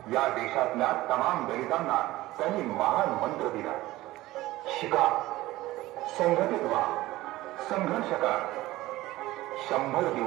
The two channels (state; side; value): quieter; left; 17.4 dB